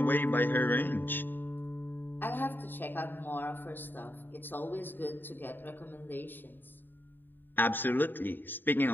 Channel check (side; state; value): right; late; 0.093 ms